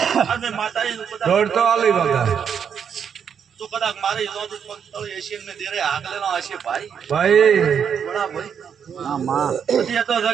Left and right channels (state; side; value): quieter; left; 7.5 dB